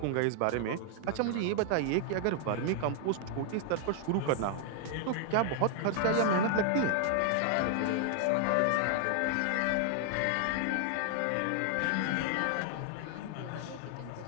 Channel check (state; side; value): different; both; correlation 0.00